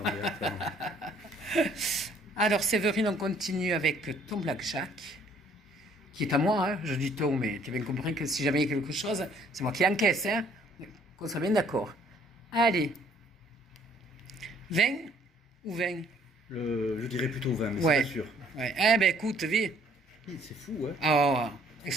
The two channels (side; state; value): both; normal; correlation 0.61